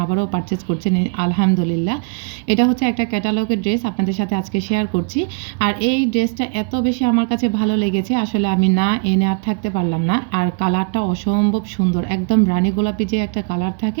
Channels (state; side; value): quieter; left; 38.1 dB